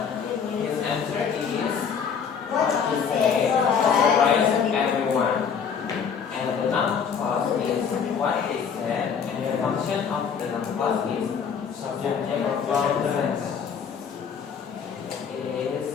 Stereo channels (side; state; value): right; quieter; 6.8 dB